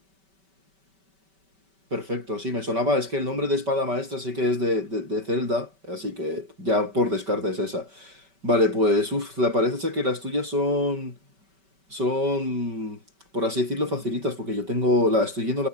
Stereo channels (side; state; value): left; late; 5.2 ms